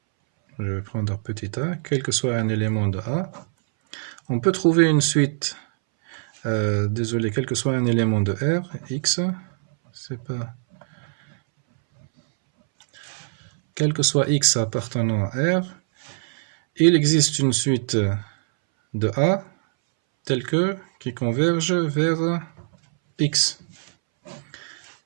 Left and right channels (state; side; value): silent; left; 63 dB below the other